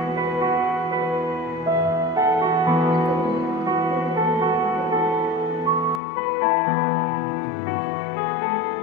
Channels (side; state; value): right; drops out; at 6.0 s